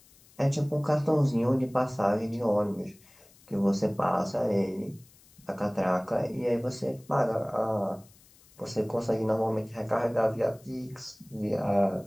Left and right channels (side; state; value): left; noise; hiss, 27 dB below the sound